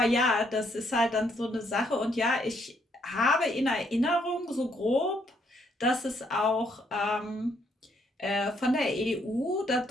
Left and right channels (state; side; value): normal; both; correlation 0.71